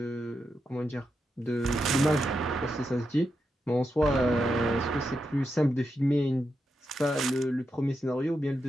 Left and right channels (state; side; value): normal; both; correlation 0.86